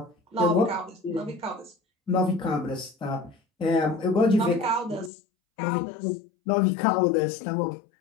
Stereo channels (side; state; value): right; drops out; at 5.1 s